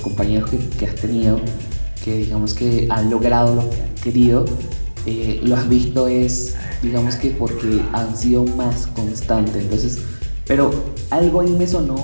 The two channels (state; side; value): inverted; both; correlation -1.00